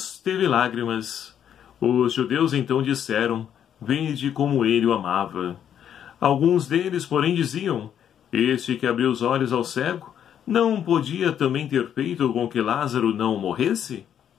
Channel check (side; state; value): right; quieter; 9.3 dB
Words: teve lágrimas. Os judeus então disseram: vede como ele o amava. Alguns deles, porém, diziam: este que abriu os olhos ao cego, não podia também ter feito com que Lázaro não morresse?